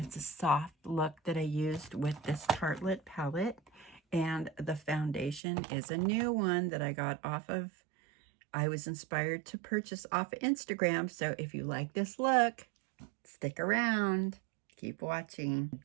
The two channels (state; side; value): drops out; left; at 5.4 s